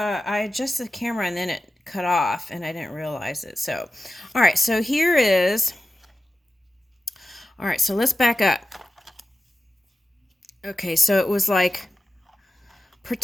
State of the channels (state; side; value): normal; both; correlation 0.93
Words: adjusted the camera and then it cut off and I didn't realize it. So, all right, so here is, all right, so let's back up. Okay, so it was like